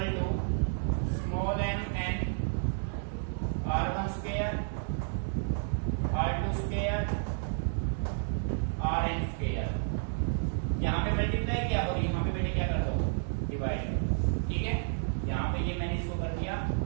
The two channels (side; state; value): left; silent; digital silence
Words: to small m n r1 square, r2 square, rn square. यहाँ पे मल्टीप्लाई किया और यहाँ पे बेटे क्या कर दो, डिवाइड। ठीक है, यहाँ पे ये मैंने इसको कर दिया